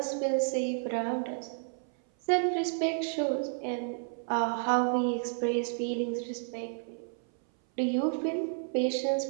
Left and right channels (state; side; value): silent; left; 57 dB below the other